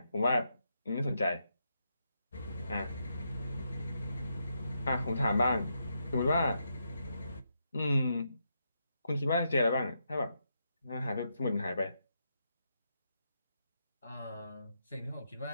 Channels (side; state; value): both; inverted; correlation -0.82